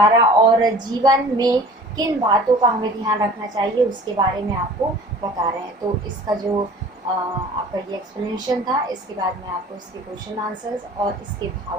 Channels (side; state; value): both; normal; correlation 0.45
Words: और जीवन में किन बातों का हमें ध्यान रखना चाहिए उसके बारे में आपको बता रहे हैं। तो इसका जो आपका ये एक्सप्लेनेशन था, इसके बाद मैं आपको इसके क्वेश्चन आंसर्स और इसके